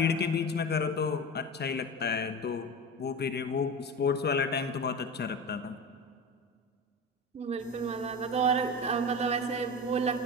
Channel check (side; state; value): both; normal; correlation 0.27